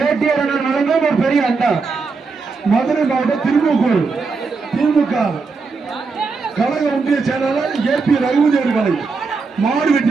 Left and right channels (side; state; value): left; quieter; 4.5 dB